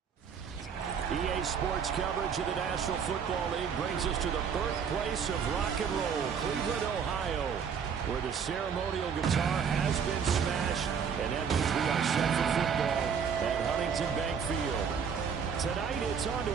EA Sports coverage of the National Football League brings us to the birthplace of rock and roll, Cleveland, Ohio, where the ceremonial guitar has been smashed, and that means we are set for football at Huntington Bank Field. Tonight, it's on to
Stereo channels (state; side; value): quieter; left; 6.8 dB